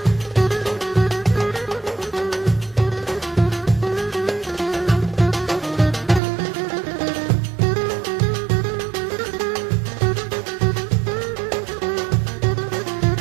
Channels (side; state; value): left; drops out; at 6.2 s